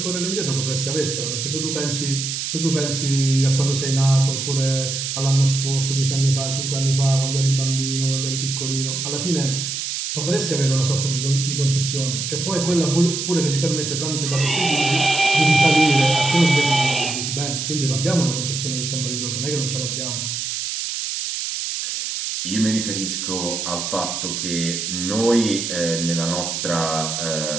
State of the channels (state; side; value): noise; right; hiss, 3 dB below the sound